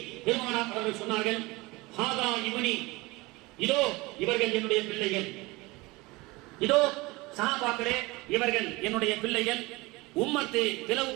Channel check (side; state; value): left; quieter; 22.6 dB